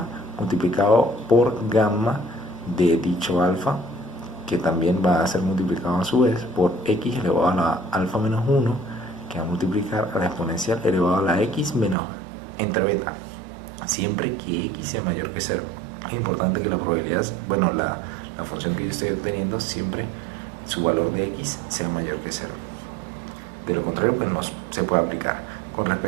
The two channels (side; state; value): left; drops out; at 12.0 s